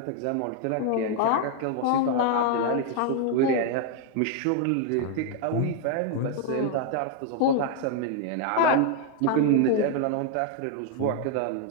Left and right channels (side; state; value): both; different; correlation 0.00